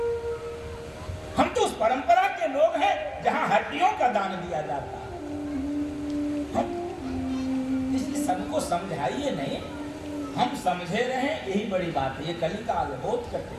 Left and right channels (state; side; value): identical; both; correlation 1.00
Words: हम तो उस परंपरा के लोग हैं जहां हड्डियों का दान दिया जाता है। इसलिए सबको समझाइए नहीं, हम समझे रहे, यही बड़ी बात है। ये कलिकाल है, बहुत